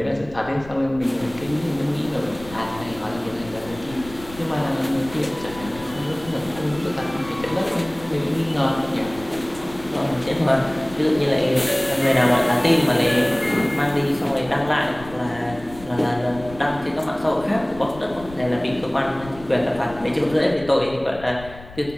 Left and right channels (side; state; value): left; noise; rumble, 17 dB below the sound